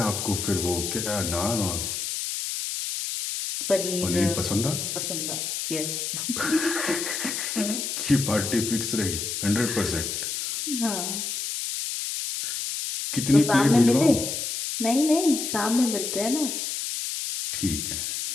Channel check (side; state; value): left; noise; hiss, 3 dB below the sound